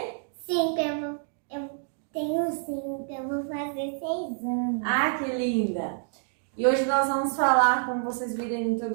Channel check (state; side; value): silent; left; digital silence